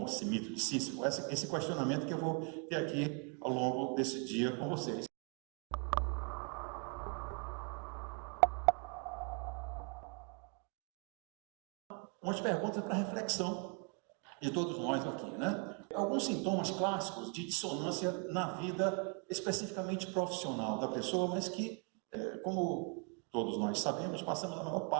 esse mito de Sísifo? Esse questionamento que eu vou ter aqui ao longo desse dia com vocês. Umas perguntas para reflexão de todos nós aqui, né? Alguns sintomas clássicos de dissonância na vida especificamente profissional da pessoa, mas que, como todos nós sabemos, passamos a maior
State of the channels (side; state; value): left; quieter; 38.5 dB